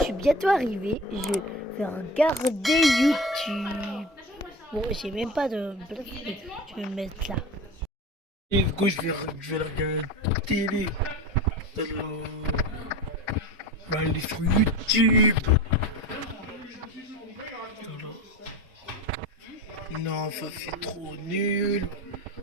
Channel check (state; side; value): normal; both; correlation 0.31